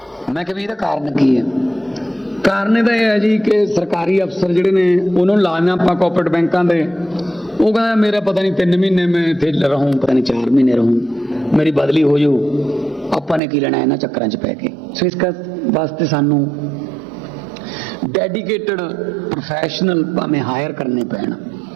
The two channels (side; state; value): left; drops out; at 13.4 s